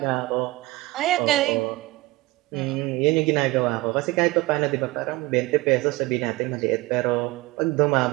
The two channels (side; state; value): left; quieter; 21.1 dB